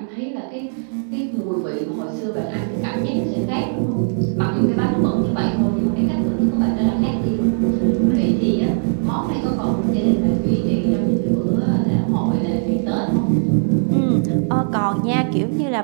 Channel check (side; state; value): left; silent; digital silence